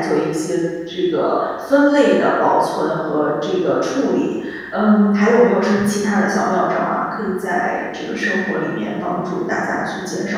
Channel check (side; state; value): both; identical; correlation 1.00